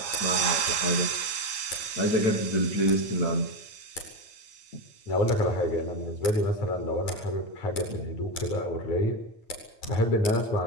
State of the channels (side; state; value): right; late; 9.2 ms